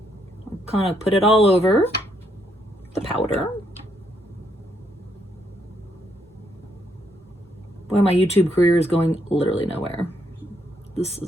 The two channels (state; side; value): normal; both; correlation 0.74